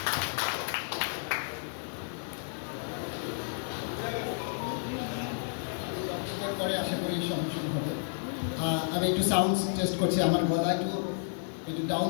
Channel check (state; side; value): silent; right; 57 dB below the other